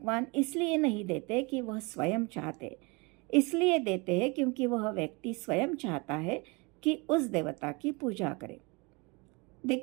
इसलिए नहीं देते कि वह स्वयं चाहते, इसलिए देते हैं क्योंकि वह व्यक्ति स्वयं चाहता है कि उस देवता की पूजा करे।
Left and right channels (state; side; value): quieter; left; 28.2 dB